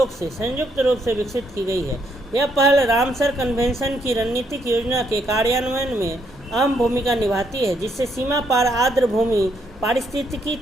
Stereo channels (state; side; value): normal; both; correlation 0.74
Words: से संयुक्त रूप से विकसित की गई है। यह पहल रामसर कन्वेंशन की रणनीतिक योजना के कार्यान्वयन में अहम भूमिका निभाती है, जिससे सीमा पार आर्द्र भूमि पारिस्थितिकी